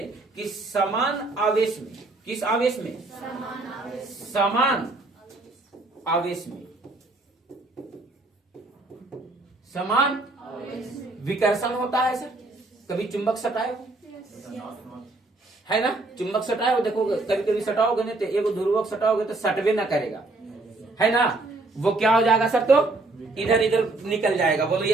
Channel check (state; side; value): quieter; left; 3.1 dB